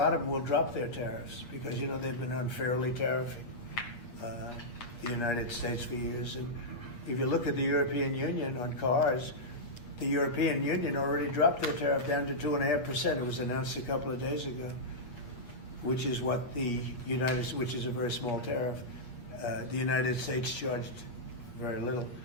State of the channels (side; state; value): right; late; 8.4 ms